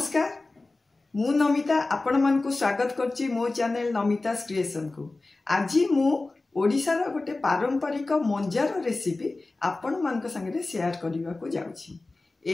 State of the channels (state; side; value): quieter; right; 3.2 dB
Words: मु नमिता आपण मानकु स्वागत करची मो चैनल नमिता क्रिएशन को। आज मु ओडिशार गोटे पारंपरिक मंजार रेसिपी आपण मानक संगे शेयर करने को जाउछि।